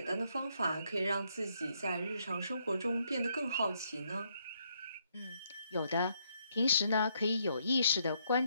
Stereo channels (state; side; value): inverted; both; correlation -0.73